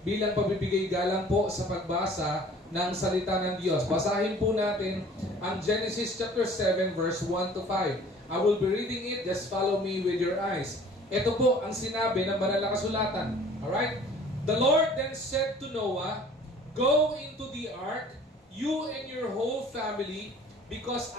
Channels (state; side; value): normal; both; correlation 0.50